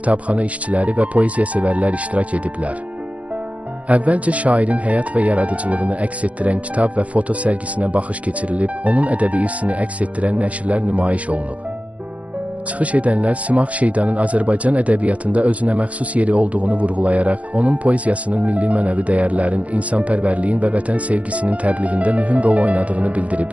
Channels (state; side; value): late; left; 0.065 ms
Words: işçiləri və poeziya sevərlər iştirak ediblər. Əvvəlcə şairin həyat və yaradıcılığını əks etdirən kitab və foto sərgisinə baxış keçirilib, onun ədəbi irsini əks etdirən nəşrlər nümayiş olunub. Çıxış edənlər Simah Şeydanın Azərbaycan ədəbiyyatında özünə məxsus yeri olduğunu vurğulayaraq, onun poeziyasının milli mənəvi dəyərlərin, insanpərvərliyin və vətən sevgisinin təbliğində mühüm rol oynadığını